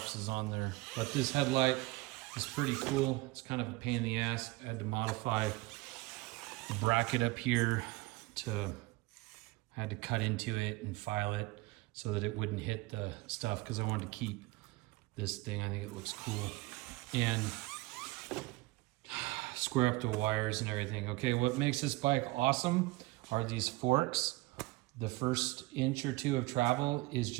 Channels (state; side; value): quieter; left; 21.4 dB